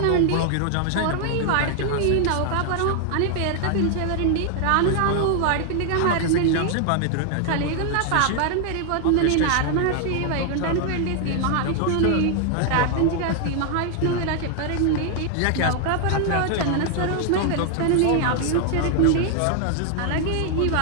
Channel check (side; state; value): both; different; correlation 0.00